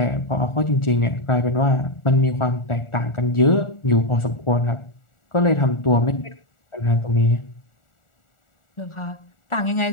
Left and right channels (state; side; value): late; right; 1.4 ms